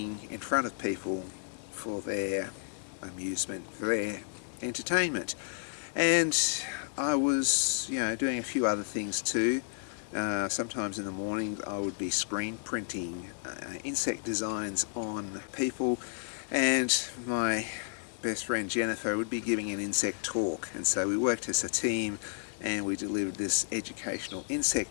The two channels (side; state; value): right; silent; digital silence